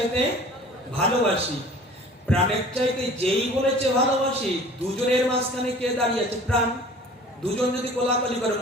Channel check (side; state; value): both; normal; correlation 0.46